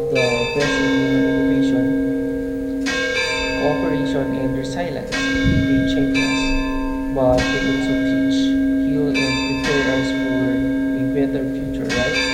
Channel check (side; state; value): both; identical; correlation 1.00